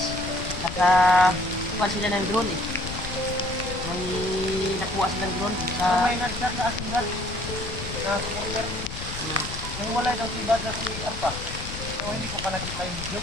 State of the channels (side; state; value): left; noise; rumble, 8 dB below the sound